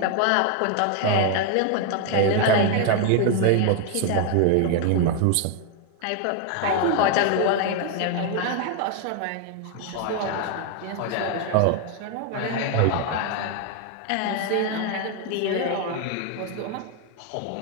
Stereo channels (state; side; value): different; both; correlation 0.00